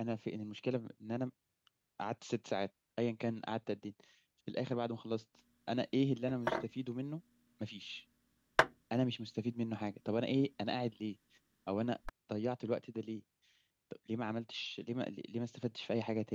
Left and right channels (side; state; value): both; identical; correlation 1.00